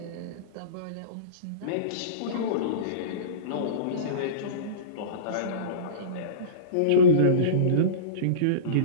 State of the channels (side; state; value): both; different; correlation -0.09